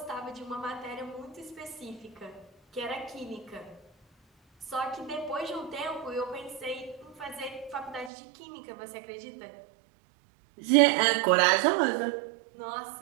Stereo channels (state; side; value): drops out; left; at 8.1 s